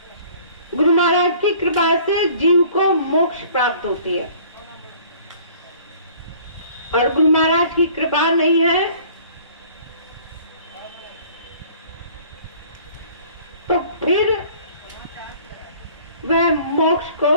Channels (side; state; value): both; inverted; correlation -0.52